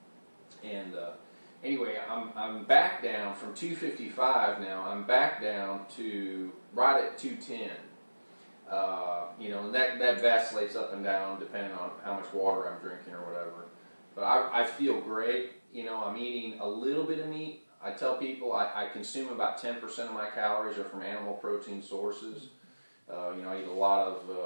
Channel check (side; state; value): both; inverted; correlation -1.00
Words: And anyway, I'm back down from 255 now. I'm back down to right at 210. And that vacillates up and down depending on how much water I'm drinking or whatever. But I feel great. I'm eating a little bit of meat. I tell people I consume about 10% of my calories are from animal protein sources. I eat a lot